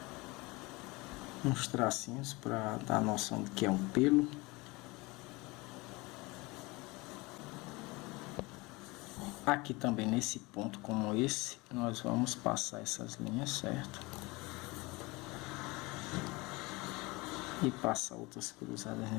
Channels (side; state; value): right; quieter; 24.0 dB